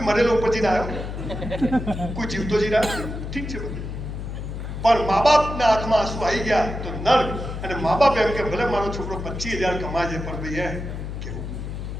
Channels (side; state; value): left; noise; hum, 6 dB below the sound